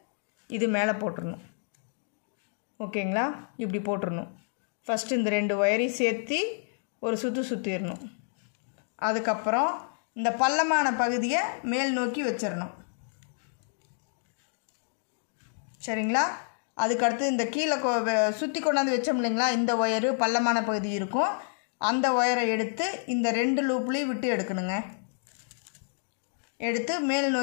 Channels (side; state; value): right; silent; digital silence